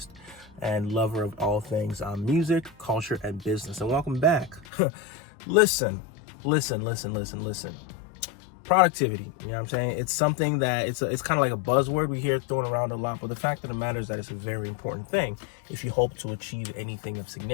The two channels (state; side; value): drops out; right; at 4.7 s